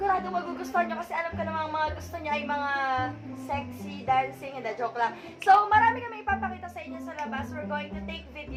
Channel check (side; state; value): both; identical; correlation 1.00